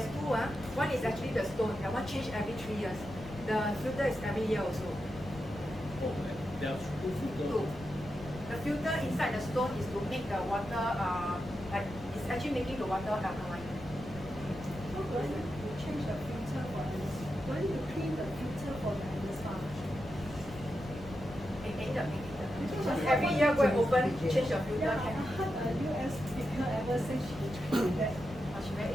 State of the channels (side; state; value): left; noise; rumble, 14 dB below the sound